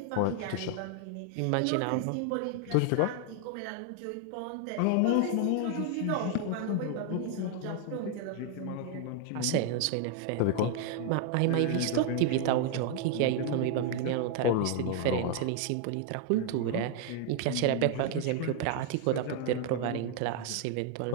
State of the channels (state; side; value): different; both; correlation 0.00